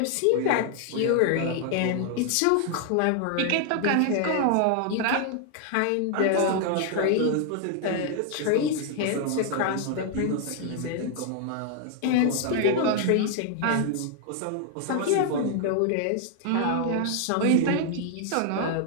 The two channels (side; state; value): both; different; correlation 0.00